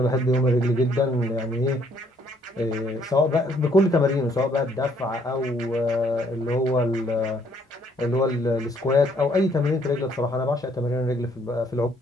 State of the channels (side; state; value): both; normal; correlation 0.66